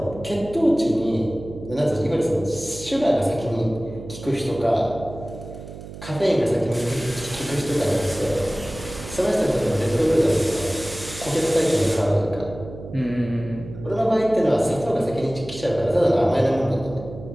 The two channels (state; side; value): noise; right; hum, 13 dB below the sound